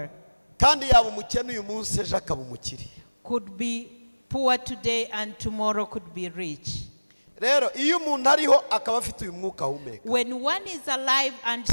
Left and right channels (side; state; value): both; inverted; correlation -1.00